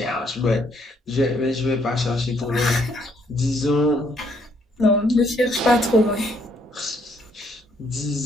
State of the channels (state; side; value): normal; both; correlation 0.69